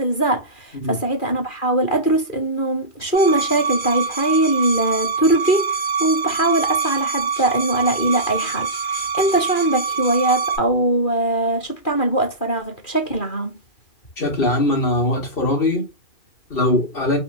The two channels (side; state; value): right; late; 2.4 ms